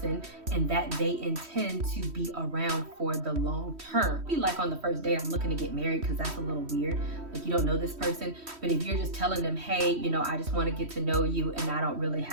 and that they intend to be around for the long term. Be like on the first date, I'm looking to get married, because that's a little weird. Like, you don't know this person, but if you're just telling them, hey, you know, I just want to get to know you and I don't really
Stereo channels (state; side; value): late; left; 3.1 ms